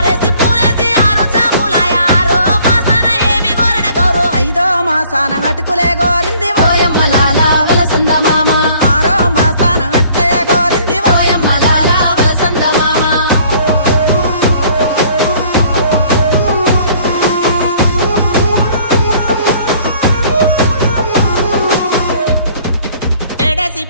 మాసాన అటుకులే గోరింది ఓయమ్మ లాల వలసంద మామ 6వ మాసాన అట్టే గోరింది ఓయమ్మ లాల వలసంద మామ ఏడేసి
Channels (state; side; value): inverted; both; correlation -0.57